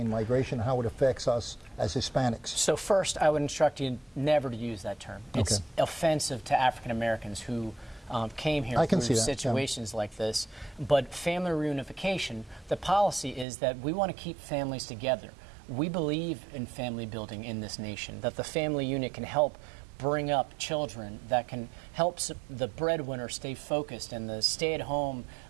migration, how it affects us as Hispanics? So first, I would instruct you never to use that term. It's offensive to African Americans who came here through situations like this. But family reunification, the policy is that we want to keep families together. We believe in family building in this nation, that the family unit can help bring up children, that can help the breadwinner stay focused and the stay-at-home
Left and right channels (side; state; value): left; drops out; at 13.5 s